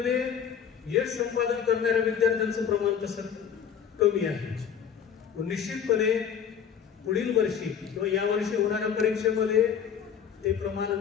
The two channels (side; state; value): right; quieter; 7.9 dB